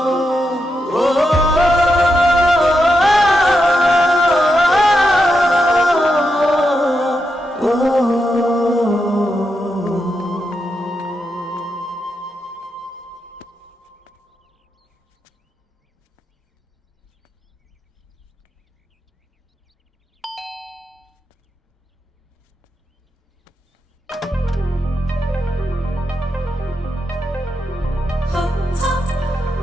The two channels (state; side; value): normal; both; correlation 0.85